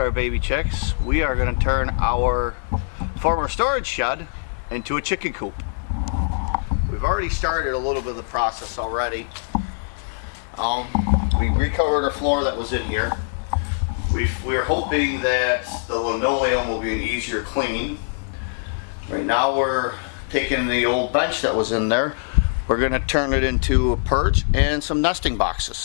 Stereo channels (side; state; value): right; silent; 64 dB below the other